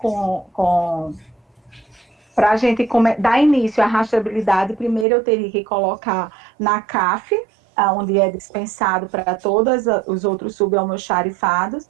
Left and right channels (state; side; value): drops out; left; at 5.1 s